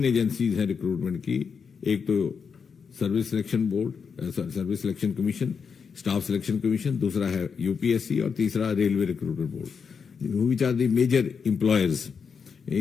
एजेंसीज हैं रिक्रूटमेंट की। एक तो service selection board, service selection commission, staff selection commission, दूसरा है यूपीएससी और तीसरा railway recruitment board, which are the major employers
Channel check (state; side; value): quieter; right; 6.1 dB